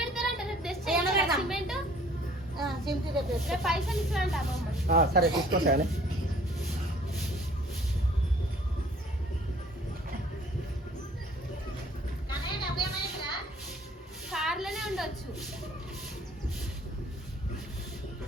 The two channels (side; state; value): both; normal; correlation 0.55